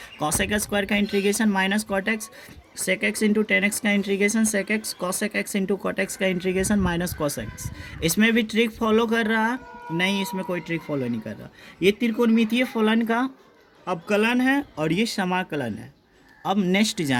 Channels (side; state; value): both; identical; correlation 1.00